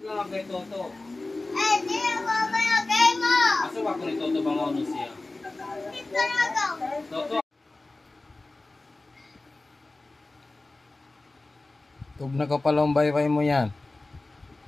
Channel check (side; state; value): right; quieter; 3.1 dB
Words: nga kay Toto. Eh, di ako mayagay mo! Asa ba ko ni Toto bang ano siya? Hindi talaga! Toto! Tug na ka palang baybay mo yan.